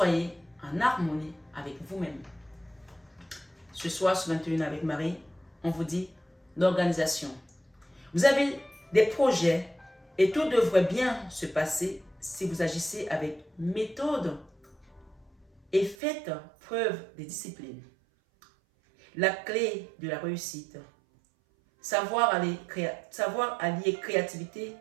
en harmonie avec vous-même. Ce soir, ce 21 avec Marie, on vous dit l'organisation. Vous avez des projets et tout devrait bien se passer si vous agissez avec méthode et faites preuve de discipline. La clé de la réussite, savoir allier créativité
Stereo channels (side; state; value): left; drops out; at 16.0 s